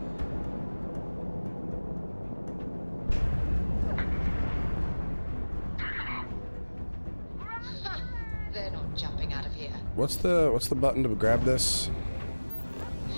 They're not jumping out of here. What's the button to grab this?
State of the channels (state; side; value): inverted; both; correlation -1.00